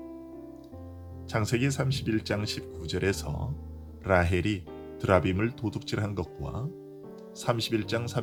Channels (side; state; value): both; identical; correlation 1.00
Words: 창세기 31장 19절에서 라헬이 드라빔을 도둑질한 것과 31장